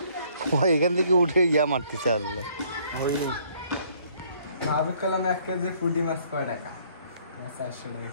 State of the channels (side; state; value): both; inverted; correlation -0.62